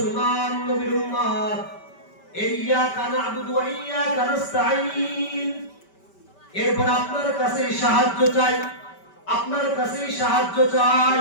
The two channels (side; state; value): right; late; 5.2 ms